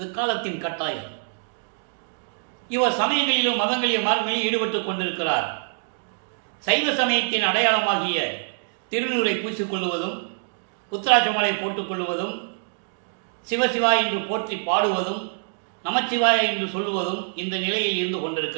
காலத்தின் கட்டாயம். இவர் சமயங்களிலும் மதங்களிலும் மார்க்கங்களிலும் ஈடுபட்டுக் கொண்டிருக்கிறார். சைவ சமயத்தின் அடையாளமாகிய திருநூரை பூசிக்கொள்வதும், உத்தராட்சமாலை போட்டுக்கொள்வதும், சிவசிவா என்று போற்றி பாடுவதும், நமச்சிவாய என்று சொல்லுவதும் இந்த நிலையில் இருந்து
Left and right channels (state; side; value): silent; left; digital silence